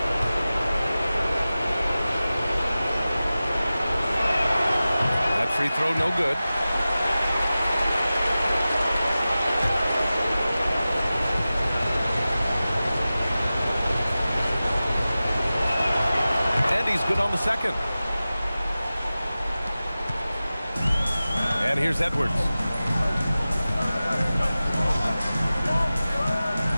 That free throw no good. He's good on the second. And here's Edwards.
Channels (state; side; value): inverted; both; correlation -0.96